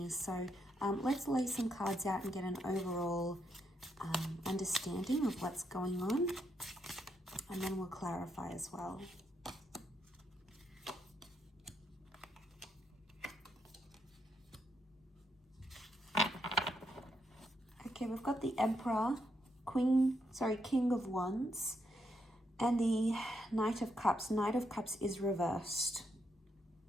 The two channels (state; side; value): normal; both; correlation 0.79